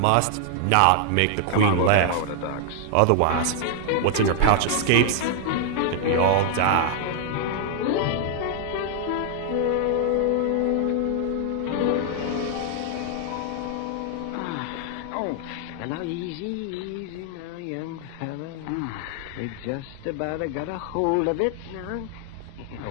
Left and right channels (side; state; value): both; different; correlation 0.00